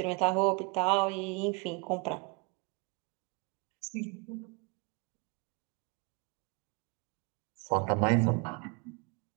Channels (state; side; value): quieter; left; 29.6 dB